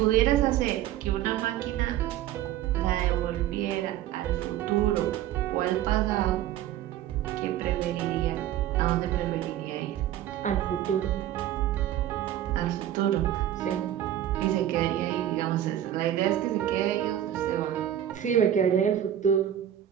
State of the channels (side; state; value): left; quieter; 11.7 dB